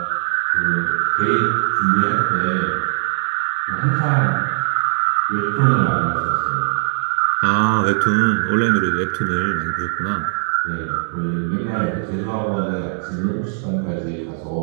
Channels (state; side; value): silent; left; digital silence